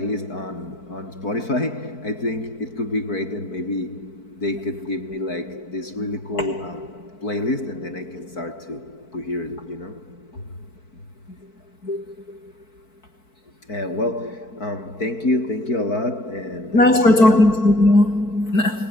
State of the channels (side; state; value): right; late; 4.5 ms